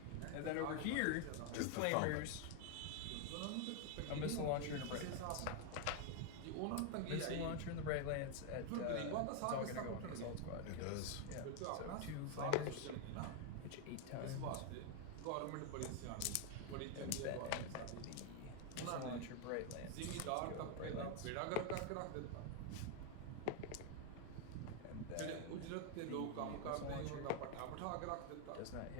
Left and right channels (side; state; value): both; different; correlation 0.01